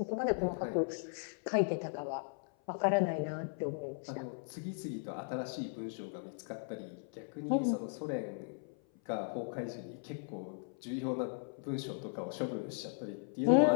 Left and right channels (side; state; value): right; silent; 53 dB below the other